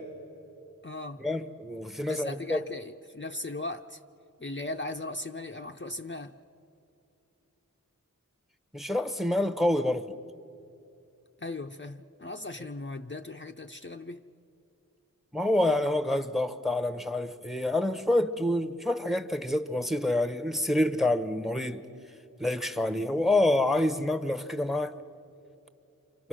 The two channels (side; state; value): both; normal; correlation 0.81